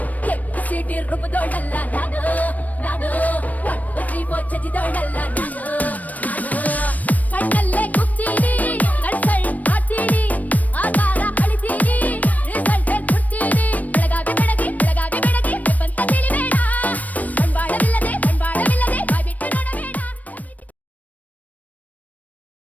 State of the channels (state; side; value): late; right; 0.074 ms